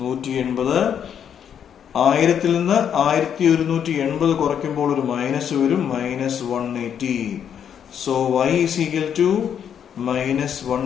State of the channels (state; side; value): quieter; right; 8.5 dB